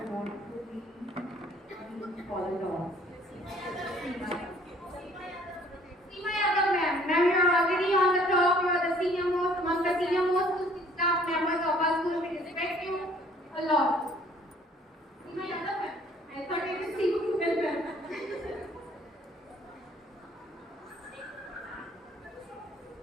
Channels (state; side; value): normal; both; correlation 0.58